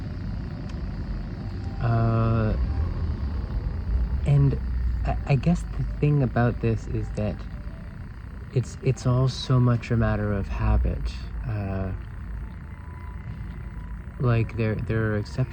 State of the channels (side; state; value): both; identical; correlation 1.00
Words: And I guess the thing about this is that it's all so much a matter of habit. Like there are